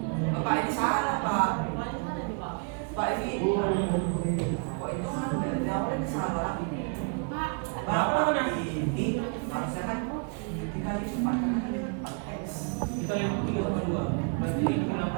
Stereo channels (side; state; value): left; quieter; 37.9 dB